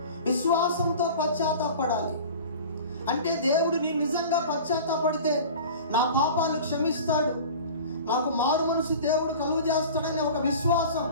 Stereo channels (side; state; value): both; inverted; correlation -0.39